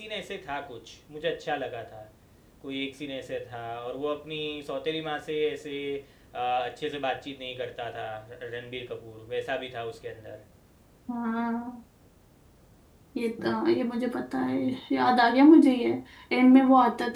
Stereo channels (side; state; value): both; identical; correlation 1.00